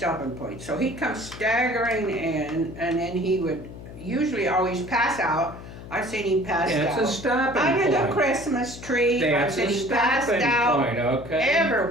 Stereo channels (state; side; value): noise; left; hum, 14 dB below the sound